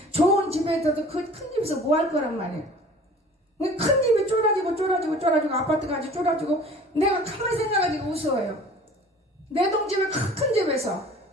좋은 집에 있어도 그 큰 집에서 뭐 할 거란 말이에요. 큰 집이 쫄아지고 아파트까지 쫄아지고 내가 가만히 생각하니까 웃어요. 내 동집에 큰 집에서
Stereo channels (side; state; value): both; normal; correlation 0.46